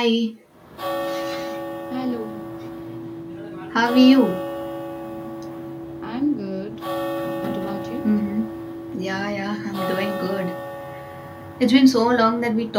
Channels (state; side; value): identical; both; correlation 1.00